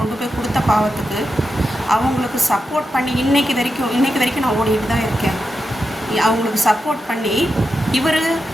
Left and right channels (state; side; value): normal; both; correlation 0.88